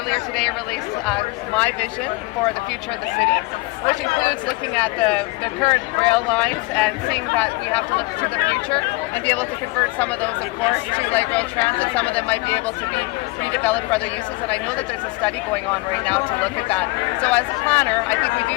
today released my vision for the future of the city, which includes looking at the current rail lines and seeing that we have to look to the future and be able to convert some of those, of course, to light rail transit. Some of them might be able to be redeveloped for other uses, and I know that there's a study going on right now to look at that. So as a planner, I think we do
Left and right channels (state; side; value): quieter; right; 23.6 dB